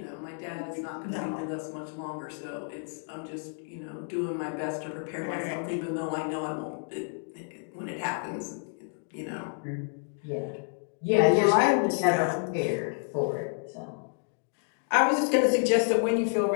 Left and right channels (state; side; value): silent; right; 58 dB below the other